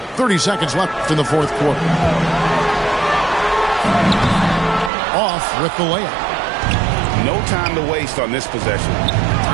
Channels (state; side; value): drops out; left; at 4.9 s